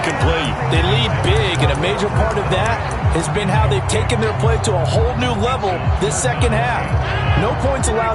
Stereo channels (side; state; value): both; identical; correlation 1.00